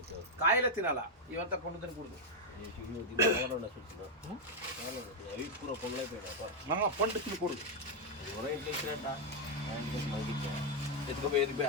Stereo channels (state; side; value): normal; both; correlation -0.01